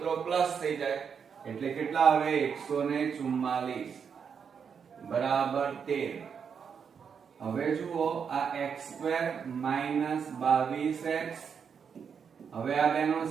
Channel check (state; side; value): quieter; left; 6.8 dB